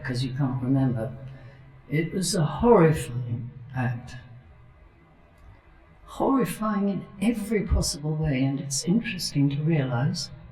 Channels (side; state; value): both; identical; correlation 1.00